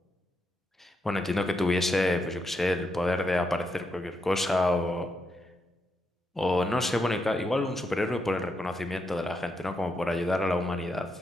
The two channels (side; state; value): both; normal; correlation 0.81